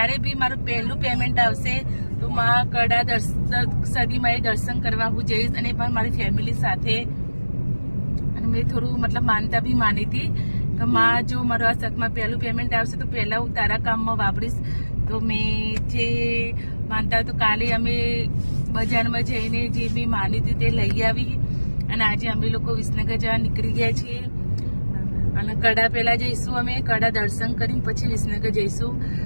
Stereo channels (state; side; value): inverted; both; correlation -1.00